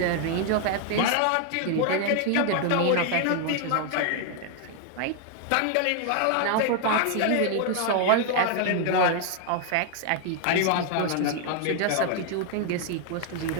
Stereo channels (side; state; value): both; different; correlation 0.00